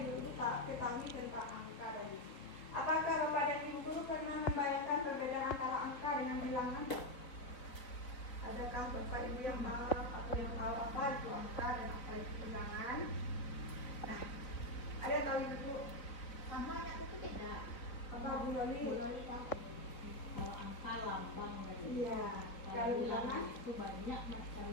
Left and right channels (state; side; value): late; right; 3.9 ms